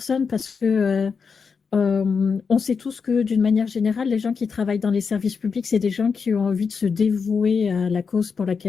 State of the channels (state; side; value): quieter; right; 5.6 dB